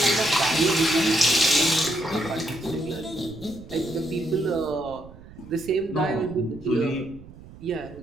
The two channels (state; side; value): noise; right; rumble, 18 dB below the sound